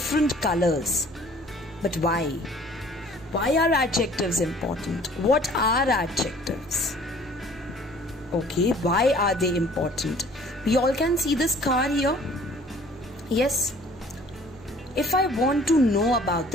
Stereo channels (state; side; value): noise; right; hum, 21 dB below the sound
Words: colors. But why? Why are adjectives important? What are adjectives? Okay, why are they important? We all can see this car here. Yes. If I want to know about